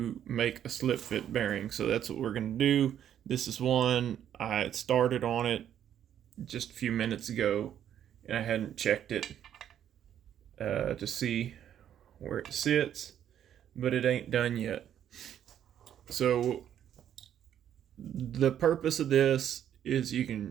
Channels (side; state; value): left; quieter; 10.1 dB